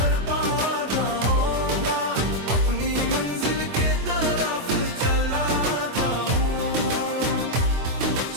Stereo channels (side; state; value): left; late; 24 ms